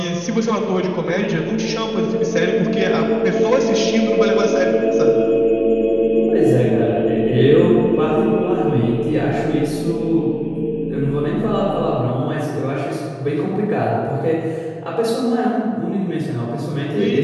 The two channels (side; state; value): both; identical; correlation 1.00